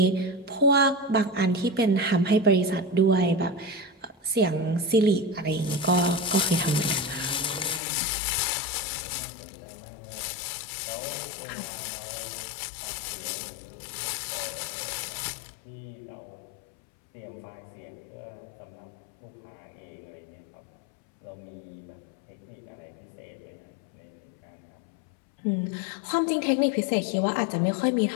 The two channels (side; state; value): right; drops out; at 7.8 s